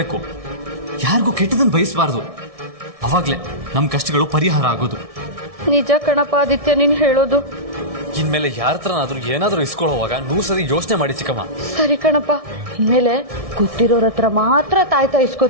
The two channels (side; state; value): left; late; 1.6 ms